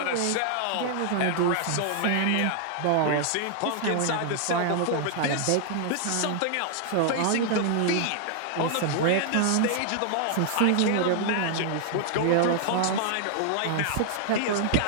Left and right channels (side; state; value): both; different; correlation -0.01